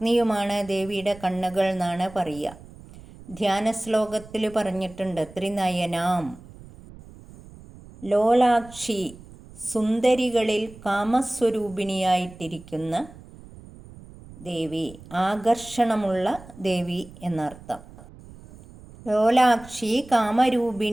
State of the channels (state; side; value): noise; right; rumble, 19 dB below the sound